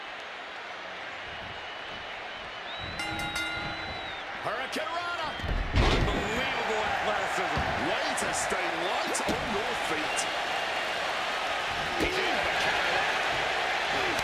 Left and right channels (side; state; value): both; identical; correlation 1.00